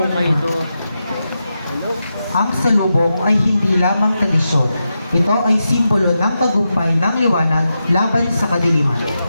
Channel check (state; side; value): inverted; both; correlation -0.88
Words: Ang salubong ay hindi lamang tradisyon. Ito ay simbolo ng tagumpay ng liwanag laban sa kadiliman.